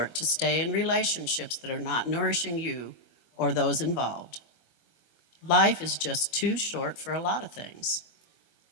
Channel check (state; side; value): late; right; 25 ms